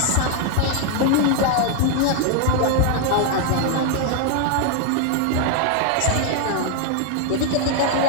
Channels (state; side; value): different; both; correlation 0.00